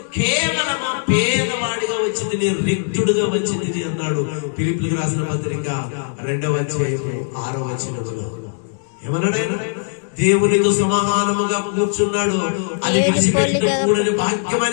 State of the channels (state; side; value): silent; right; 65 dB below the other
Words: కేవలం పేదవాడిగా వచ్చింది, నేను రిక్తుడుగా వచ్చింది అన్నాడు. ఫిలిప్పీయులకు రాసిన పత్రిక 2వ అధ్యాయం 6వ వచనములో ఏమన్నాడు ఆయన? దేవునితో సమానముగా కూర్చున్నాడు, అది విడిచిపెట్టకూడని